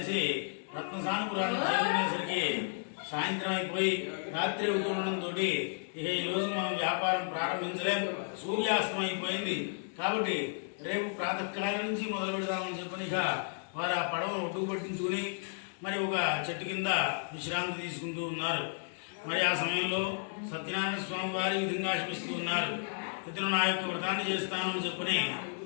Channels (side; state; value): right; silent; digital silence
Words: రత్నసానపురాన్ని చేరుకునేసరికి సాయంత్రం అయిపోయి రాత్రి అవుతుండడంతో ఇక ఈ రోజు మనం వ్యాపారం ప్రారంభించలేం, సూర్యాస్తం అయిపోయింది, కాబట్టి రేపు ప్రాతకాలం నుంచి మొదలు పెడదామని చెప్పని ఇక వారు ఆ పడవను ఒడ్డుకు పట్టించుకుని మరి ఒక చెట్టు కింద విశ్రాంతి తీసుకుంటూ ఉన్నారు. మరి ఆ సమయంలో సత్యనారాయణ స్వామి వారి విధంగా ఆశిస్తూ ఉన్నారు. ఇతను నా యొక్క వ్రతాన్ని చేస్తాను అని చెప్పని